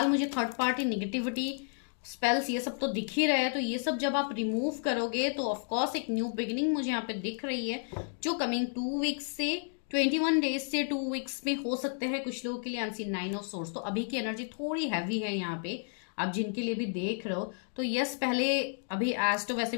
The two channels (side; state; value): right; silent; 57 dB below the other